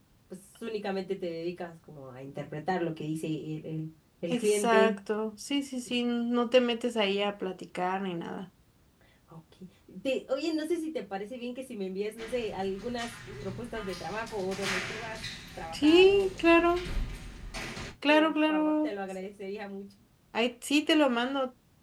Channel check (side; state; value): both; identical; correlation 1.00